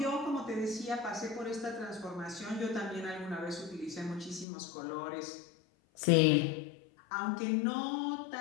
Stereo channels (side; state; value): right; drops out; at 4.5 s